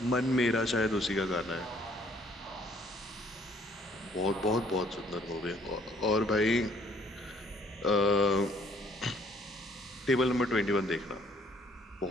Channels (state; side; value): normal; both; correlation 0.62